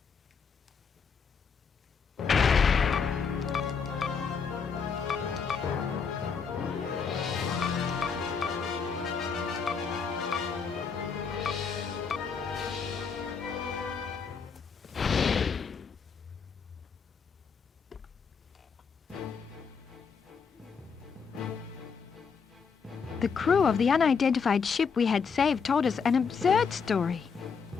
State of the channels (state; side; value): quieter; right; 5.9 dB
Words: The crew of the unidentified ship we had saved told us an absurd story.